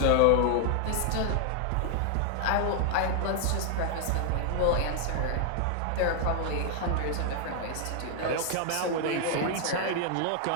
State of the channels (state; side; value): different; both; correlation 0.00